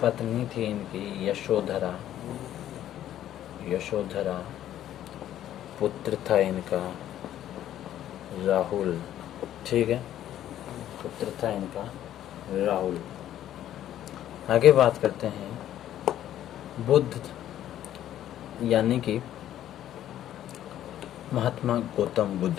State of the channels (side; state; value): right; quieter; 11.9 dB